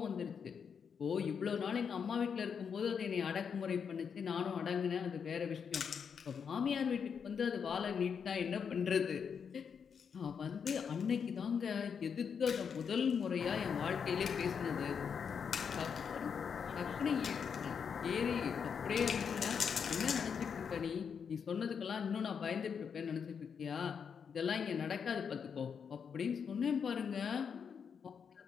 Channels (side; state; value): right; quieter; 6.8 dB